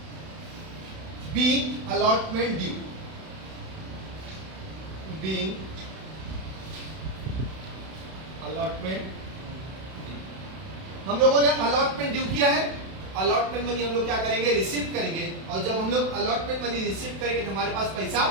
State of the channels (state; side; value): late; left; 32 ms